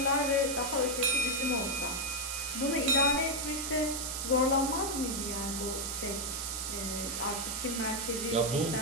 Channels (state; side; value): noise; right; hiss, 3 dB below the sound